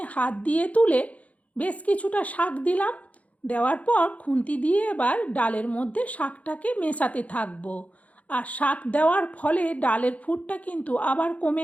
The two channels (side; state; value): right; late; 0.068 ms